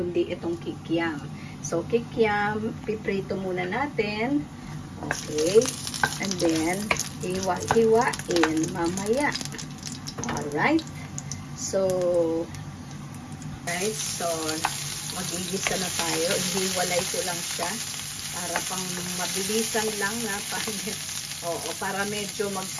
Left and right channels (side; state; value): both; identical; correlation 1.00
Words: itong kikiam. So, kikiam, piprito muna natin. Okay, and then, hiwa-hiwain mamaya. Alright. So, guys, so, magigisa na tayo. Hiwalay ko lang siya para pang mabilisan lang na para medyo